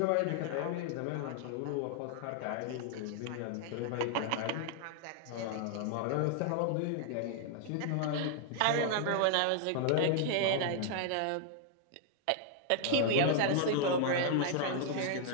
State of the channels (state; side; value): different; both; correlation 0.00